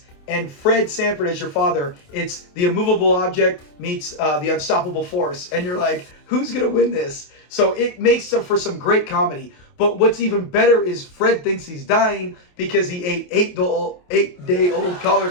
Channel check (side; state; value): right; late; 28 ms